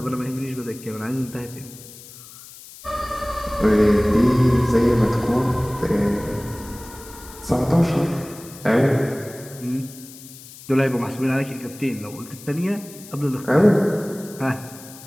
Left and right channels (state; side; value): noise; left; hiss, 18 dB below the sound